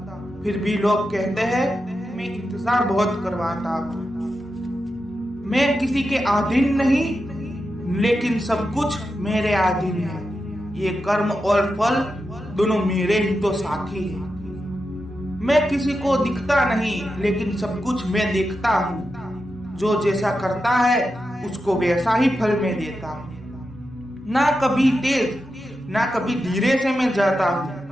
फिर भी लोग कहते हैं मैं इंतजार बहुत करवाता हूँ। मैं किसी के अधीन नहीं लेकिन सब कुछ मेरे अधीन है। ये कर्म और फल दोनों मेरे ही तो साथी हैं। मैं किसी को दिखता नहीं लेकिन सब कुछ मैं देखता हूँ। जो जैसा करता है उसको वैसा ही फल मैं देता हूँ। ना कभी तेज ना कभी धीरे से मैं जाता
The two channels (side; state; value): both; normal; correlation 0.89